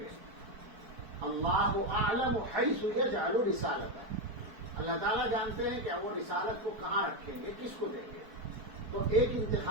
اللہ اعلم حیث یجعل رسالتہ، اللہ تعالیٰ جانتے ہیں کہ وہ رسالت کو کہاں رکھیں گے، کس کو دیں گے۔ تو ایک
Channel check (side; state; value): left; late; 4.5 ms